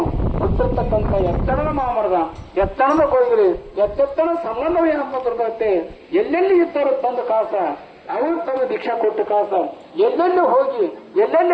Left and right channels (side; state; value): both; identical; correlation 1.00